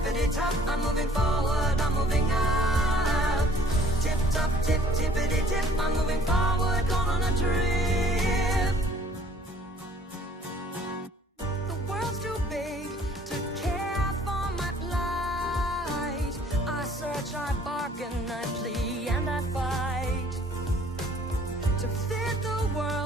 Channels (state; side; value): normal; both; correlation 0.57